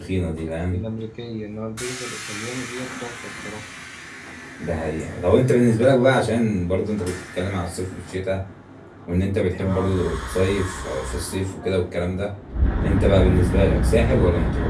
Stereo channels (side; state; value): both; identical; correlation 1.00